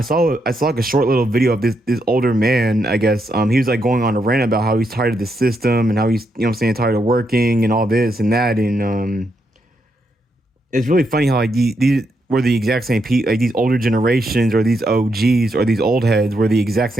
saw like a short little video of this older man, I guess. He was like going on a rant about how he's tired of the system and how he's, you know what I'm saying, tired of working and all this and that. And it's really funny how like these were the exact same people, like these older generations or these OGs or these old heads were the exact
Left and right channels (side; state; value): both; normal; correlation 0.80